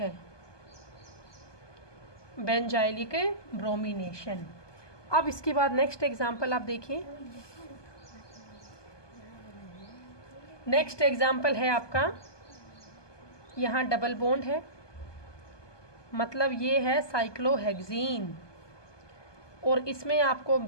बेंजाइलिक ब्रोमिनेशन। अब इसके बाद नेक्स्ट एग्जाम्पल आप देखिए। नेक्स्ट एग्जाम्पल है आपका, यहाँ डबल बॉन्ड है, मतलब ये है साइक्लोहेक्सीन और इसमें आपको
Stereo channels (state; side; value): late; right; 1.2 ms